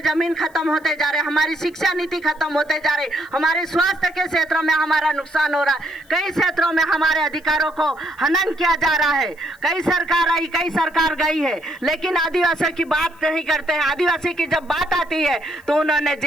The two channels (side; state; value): left; noise; hiss, 30 dB below the sound